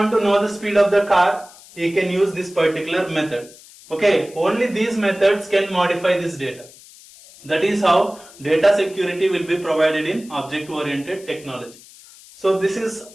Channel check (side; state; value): left; noise; hiss, 22 dB below the sound